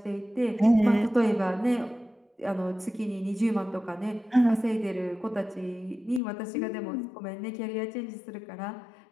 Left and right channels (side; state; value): right; drops out; at 6.2 s